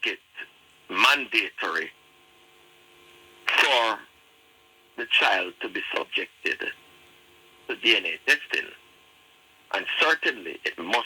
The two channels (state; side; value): identical; both; correlation 1.00